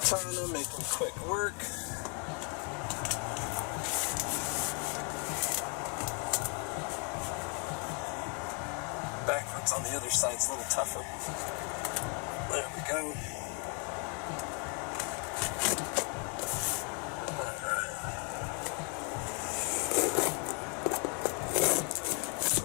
making quick work. Backwards on the other side's a little tougher. There we go. Alright.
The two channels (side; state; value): right; quieter; 37.1 dB